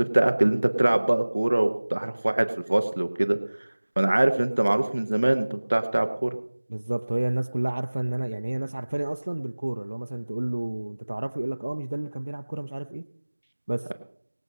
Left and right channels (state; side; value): inverted; both; correlation -1.00